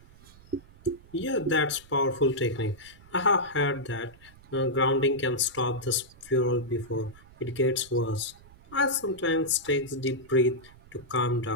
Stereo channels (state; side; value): noise; right; rumble, 24 dB below the sound